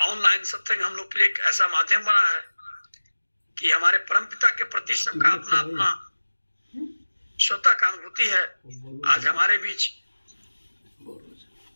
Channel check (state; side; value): inverted; both; correlation -1.00